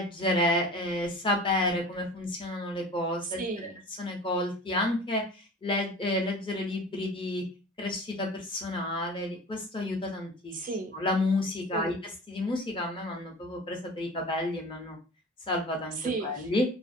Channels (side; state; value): both; normal; correlation 0.39